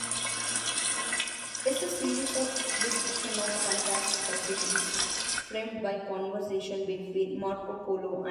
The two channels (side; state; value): both; identical; correlation 1.00